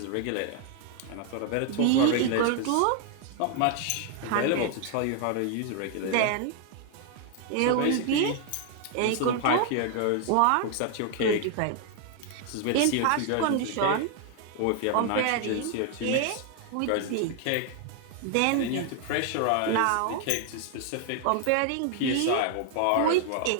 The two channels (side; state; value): both; different; correlation 0.00